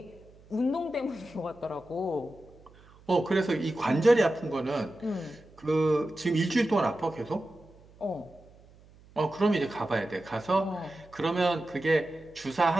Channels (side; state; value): right; noise; hum, 25 dB below the sound